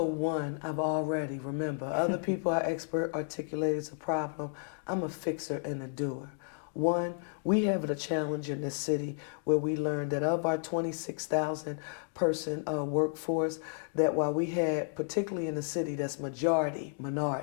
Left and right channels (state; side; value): silent; right; 56 dB below the other